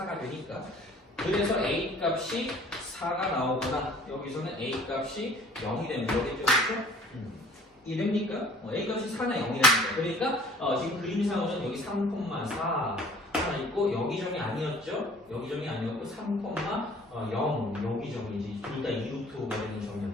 되니까. 그래서 a 값이 4가 나오거나 여기서는 a 값이 0이 되면 되겠죠. 그렇죠? 이해됩니까? a 값이 4나 0이 됩니다. 그러니까 지금 그림상으로는 여기 3,4 하나 있고 여기 점이 아니었죠? 여기 점이 아니었고 3,0 여기 점이지. 둘 다 2루트가 되는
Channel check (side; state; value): both; normal; correlation 0.52